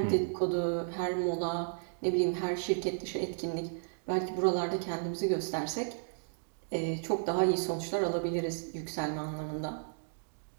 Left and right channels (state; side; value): silent; left; digital silence